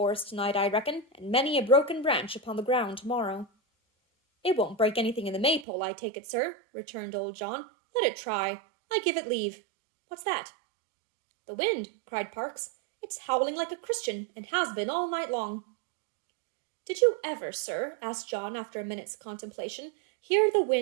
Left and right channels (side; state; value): left; drops out; at 5.7 s